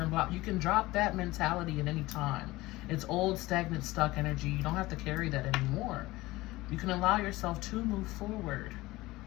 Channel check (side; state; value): right; quieter; 19.3 dB